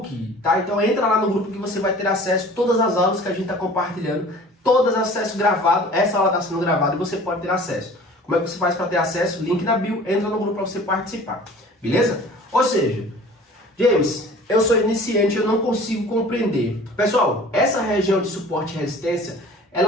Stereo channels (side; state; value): both; normal; correlation 0.45